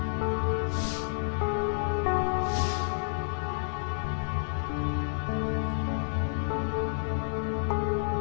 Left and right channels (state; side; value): silent; right; 58 dB below the other